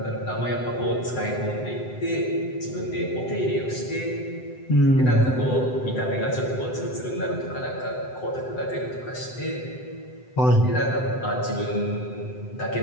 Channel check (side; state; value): right; late; 7.8 ms